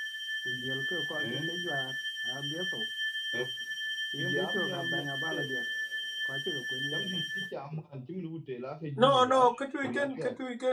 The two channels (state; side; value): identical; both; correlation 1.00